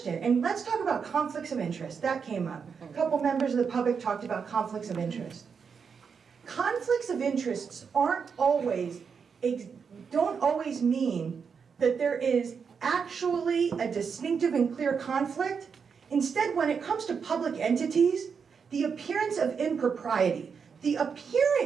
and let's talk about conflicts of interest. That came up. A couple members of the public talked about conflicts of interest. Conflicts of interests don't always mean that there is actually a distinctive and clear conflict. Instead, when it comes to public entities, the appearance of impropriety, the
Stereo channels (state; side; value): quieter; left; 6.1 dB